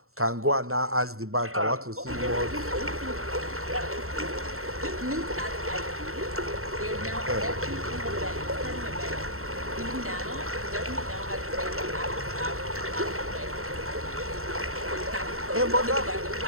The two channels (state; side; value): late; left; 0.63 ms